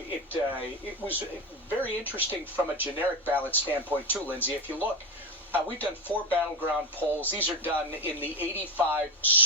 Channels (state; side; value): normal; both; correlation 0.17